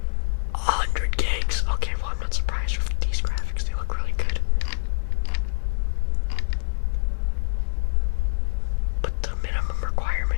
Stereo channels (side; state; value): right; silent; digital silence